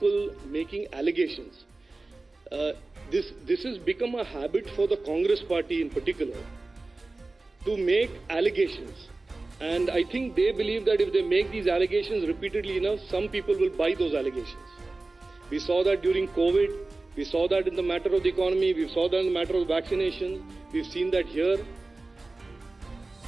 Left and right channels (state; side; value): quieter; left; 3.2 dB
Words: making allegations. This has become a habit for the Congress party in particular to make allegations. And I think they believe that if they make these allegations repeatedly enough, some people will buy those allegations. We saw that during COVID. We saw that in the matter of the economy. We saw that in the matter of vaccination. We've seen that here.